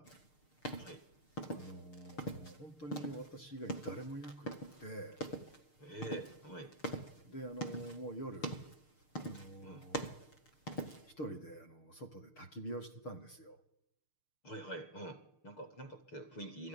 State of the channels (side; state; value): right; late; 6.6 ms